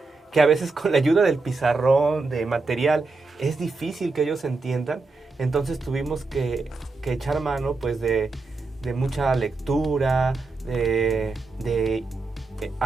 que a veces con la ayuda del pizarrón, de material, es difícil que ellos entiendan. Entonces tuvimos que echar mano pues de mucha lectura, de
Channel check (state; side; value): quieter; left; 3.8 dB